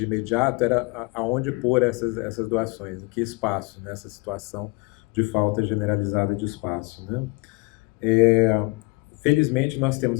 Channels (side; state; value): right; quieter; 27.4 dB